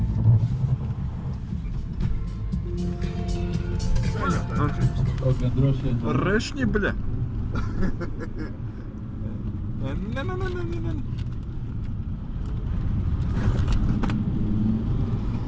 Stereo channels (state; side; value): identical; both; correlation 1.00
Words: Kaut gan droši vien... Rešņi, bļa! Ne.